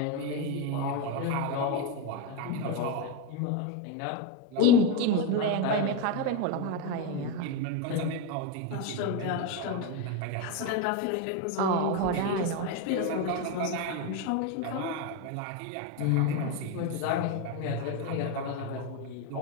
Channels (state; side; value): different; both; correlation 0.04